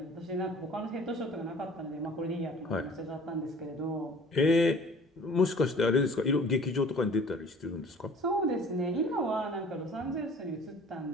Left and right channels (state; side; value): normal; both; correlation 0.49